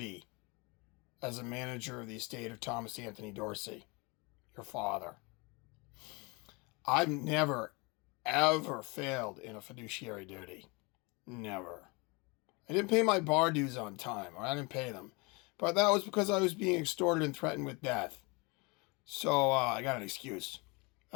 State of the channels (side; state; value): right; quieter; 28.1 dB